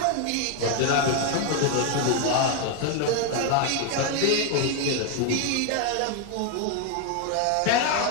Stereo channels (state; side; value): different; both; correlation 0.01